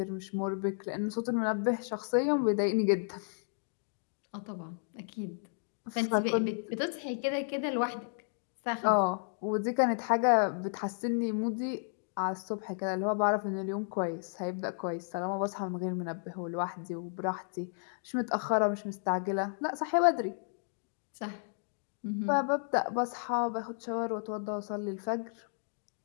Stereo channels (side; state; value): right; silent; digital silence